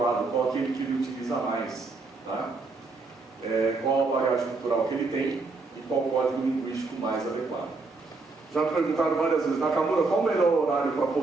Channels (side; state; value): left; quieter; 3.7 dB